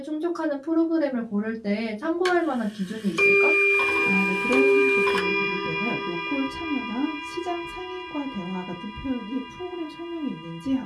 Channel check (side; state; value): both; identical; correlation 1.00